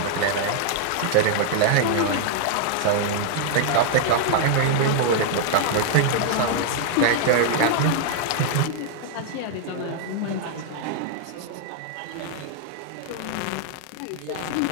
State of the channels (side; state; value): both; different; correlation -0.01